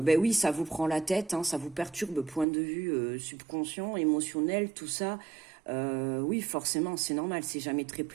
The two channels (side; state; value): left; drops out; at 2.5 s